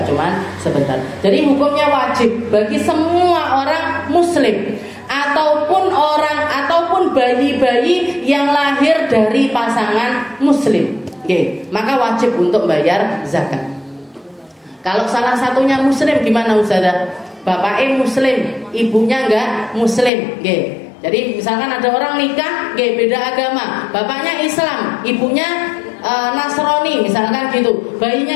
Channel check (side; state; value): right; drops out; at 20.1 s